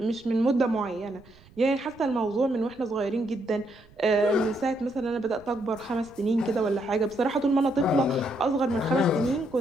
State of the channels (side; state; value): right; noise; rumble, 26 dB below the sound